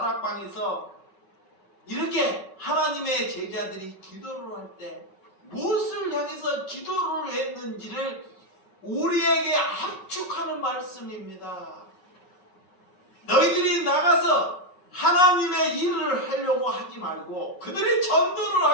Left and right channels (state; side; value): late; right; 5.3 ms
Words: 이렇게 하나님의 제자들이 기도를 할 때 무엇을 향해서 기도를 했는지를 우리에게 압축하는 말씀입니다. 너희들이 나가서 하나님의 일을 하려고 하지 말고 그들이 전도를